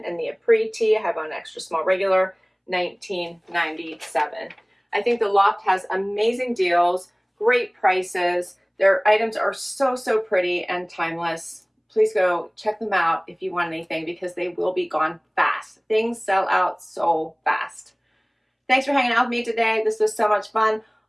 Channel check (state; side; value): identical; both; correlation 1.00